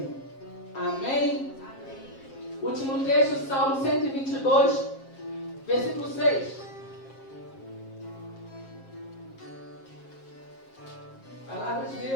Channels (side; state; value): right; late; 7.5 ms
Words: Amém? Último texto, Salmo 122, versículo 6. Palavra de